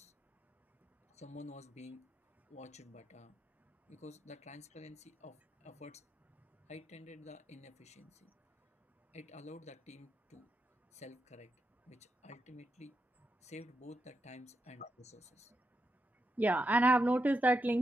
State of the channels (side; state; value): both; normal; correlation 0.85